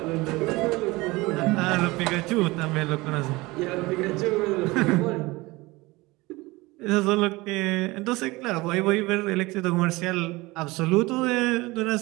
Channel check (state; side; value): quieter; left; 21.8 dB